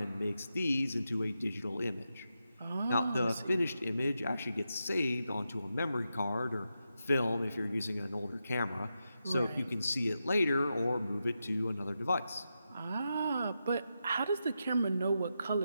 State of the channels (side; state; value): both; inverted; correlation -0.88